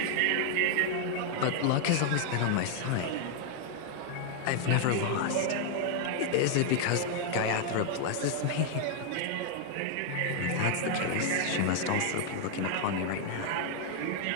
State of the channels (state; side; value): different; both; correlation 0.00